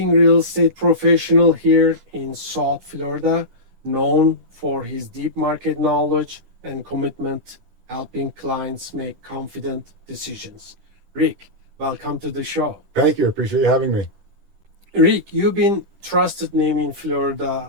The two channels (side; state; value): left; late; 10 ms